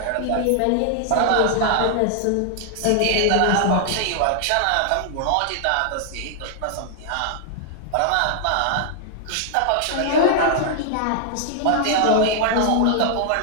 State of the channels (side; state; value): both; different; correlation 0.00